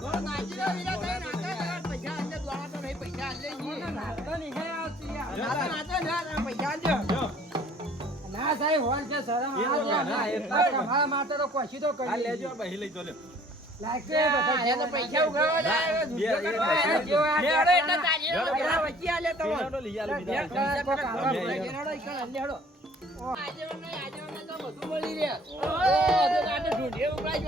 નાચીરા વિરા થઈ નાચા પૈસા અંદર દ્વારા તો નહીં પૈસા આલે જી નાચતો નહીં હે આવતી યાર નાચો ના પૈસા આલજો ના સાહેબ હોલ છે શરમ ના એટલા તમારા માટે તો કોશી તો કરી લેજો બહી લઈ તો લે લાગે બધા એને પૈસા ઉઘાવા જાય દુનિયા કરવા જો આ લેડો એટલે તાજી વચ્ચે આલે તો લેડો લઈ આલે બીજા લેડો ઈકણ લેડો આજે તો બધું મળી રહે. ઓય, તો કાંટે ઢૂંઢીએ ઉપરા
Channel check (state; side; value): normal; both; correlation 0.54